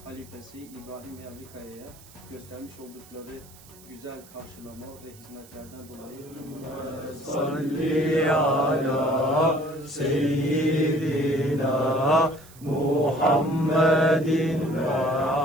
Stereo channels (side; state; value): right; noise; hiss, 23 dB below the sound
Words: halifesi İbrahim Yavlikaya'ya göstermiş oldukları güzel karşılama ve hizmetlerden dolayı Salli ala seyyidina Muhammedin ve